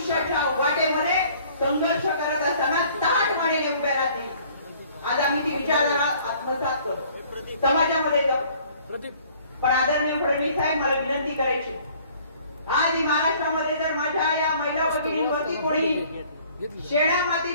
वाटेमध्ये संघर्ष करत असताना ताठ मानेने उभ्या राहतील. आज आम्ही ती विचारधारा आत्मसात करतो, समाजामध्ये जाऊ. पण आदरणीय फडणवीस साहेब, मला विनंती करायची, आज महाराष्ट्रामध्ये जर माझ्या या महिला भगिनींवरती कोणी शेणा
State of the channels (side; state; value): both; inverted; correlation -0.56